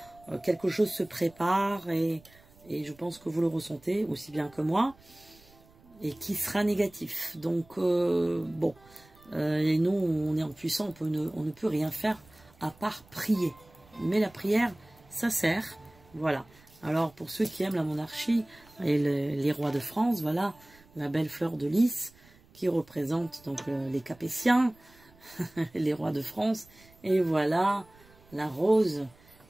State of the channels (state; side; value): noise; right; rumble, 27 dB below the sound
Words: Quelque chose se prépare et je pense que vous le ressentez aussi bien que moi. Et qui sera négatif. Donc, bon, et nous, on est impuissants, on ne peut rien faire à part prier. Mais la prière, ça sert. Voilà. Alors, pour ceux qui aiment la monarchie et les rois de France, voilà, la belle fleur de lys qui représente donc les Capétiens, les rois de France. Et voilà, la rose,